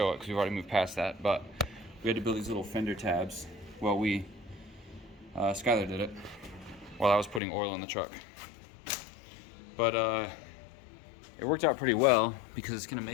it because we've already moved past that, but we had to build these little fender tabs. Well, Skylar did it while I was putting oil in the truck. But it worked out pretty well because it's gonna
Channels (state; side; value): drops out; right; at 7.4 s